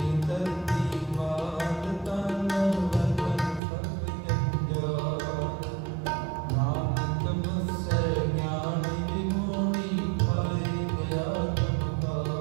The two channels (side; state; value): left; drops out; at 3.6 s